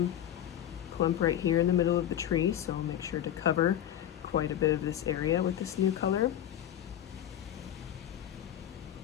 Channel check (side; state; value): right; quieter; 11.0 dB